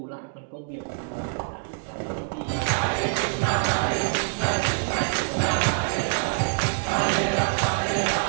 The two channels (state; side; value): silent; left; digital silence